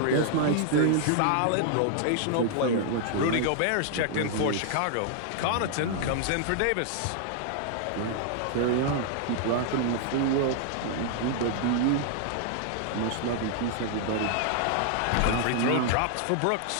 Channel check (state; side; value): different; both; correlation -0.01